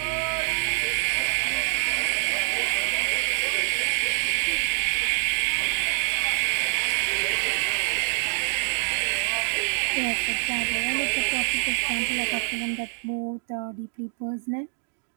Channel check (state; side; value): silent; left; digital silence